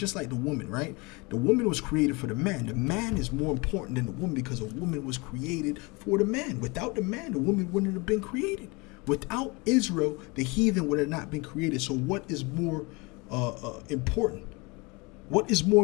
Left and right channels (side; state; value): right; quieter; 26.9 dB